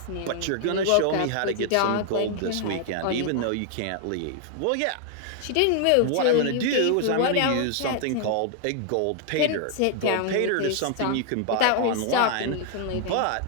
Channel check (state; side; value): different; both; correlation 0.00